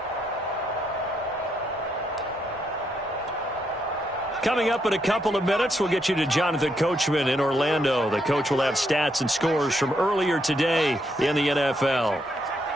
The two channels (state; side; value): normal; both; correlation 0.77